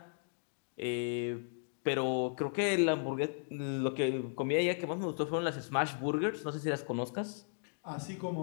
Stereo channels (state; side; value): silent; right; digital silence